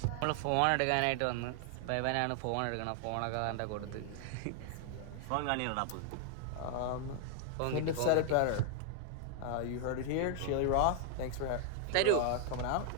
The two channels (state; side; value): different; both; correlation 0.00